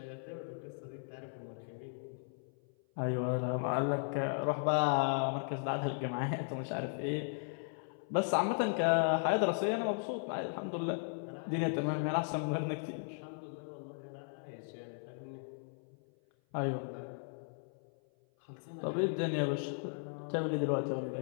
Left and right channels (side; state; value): right; silent; 53 dB below the other